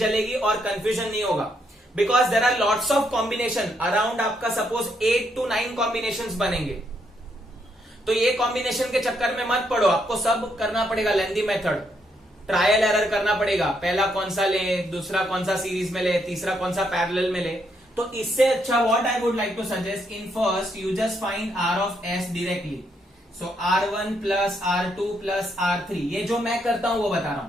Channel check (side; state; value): both; normal; correlation 0.76